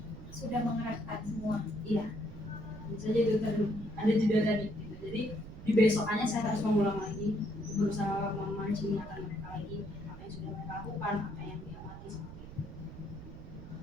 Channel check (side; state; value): right; noise; rumble, 13 dB below the sound